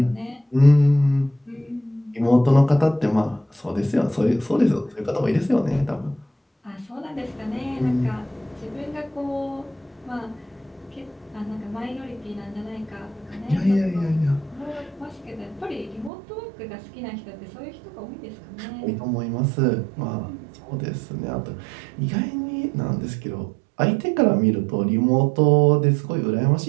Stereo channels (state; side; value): drops out; left; at 16.1 s